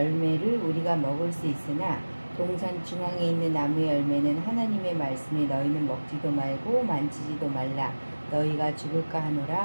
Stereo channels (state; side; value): inverted; both; correlation -1.00